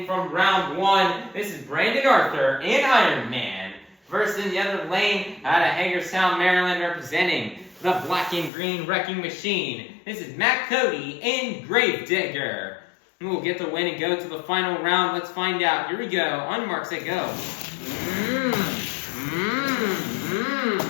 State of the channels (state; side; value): drops out; right; at 8.5 s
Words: from round 1, this is Brandon Arthur in Iron Man. Versus in the other lane, out of Hagerstown, Maryland, representing the Black and Green Wrecking Machine. This is Cody in Gravedigger. Who will get the win and go to the final round? Let's find out. Here we go. On your mark, set, go.